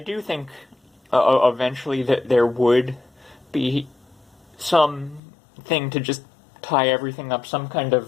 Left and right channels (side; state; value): right; drops out; at 5.2 s